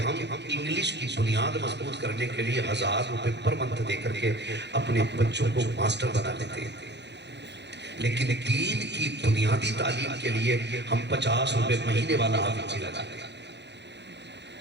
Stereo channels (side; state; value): left; late; 0.50 ms